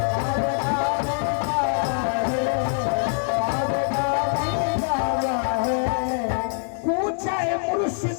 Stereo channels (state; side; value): silent; right; 59 dB below the other